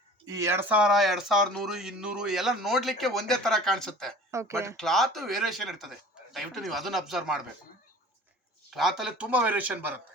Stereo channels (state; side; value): normal; both; correlation 0.44